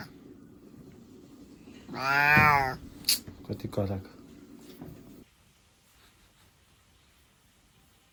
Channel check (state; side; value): identical; both; correlation 1.00